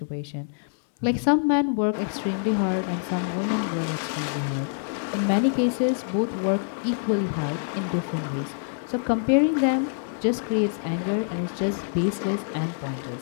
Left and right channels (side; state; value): right; silent; digital silence